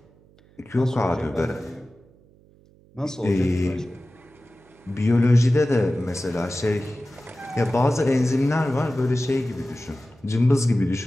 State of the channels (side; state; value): right; noise; hum, 29 dB below the sound